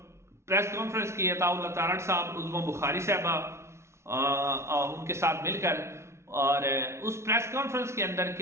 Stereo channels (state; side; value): late; left; 0.13 ms